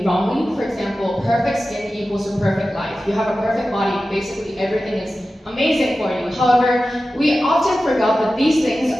wrongly. For example, perfect skin equals a perfect life. You have a perfect body, basically everything is amazing for you. However, we often forgot that these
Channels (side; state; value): both; normal; correlation 0.94